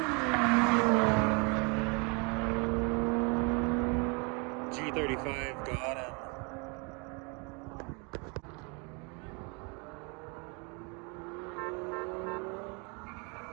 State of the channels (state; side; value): quieter; left; 32.3 dB